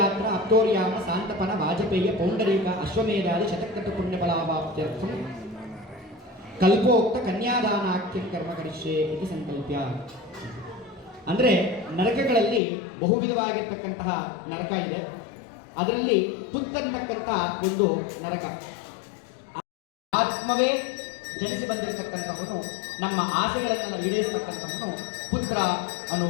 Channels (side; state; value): right; drops out; at 12.6 s